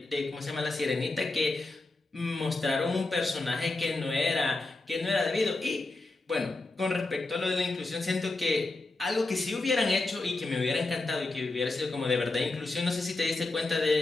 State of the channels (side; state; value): right; quieter; 3.2 dB